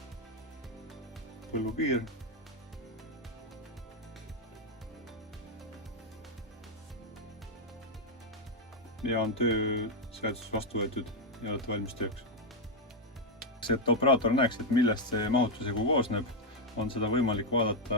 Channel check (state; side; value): normal; both; correlation 0.02